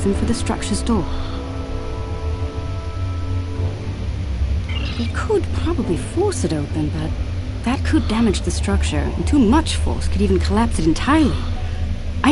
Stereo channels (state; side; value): identical; both; correlation 1.00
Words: for the structure's door. We could probably force it open, but that could damage the structure, and too much force could even collapse it entirely. I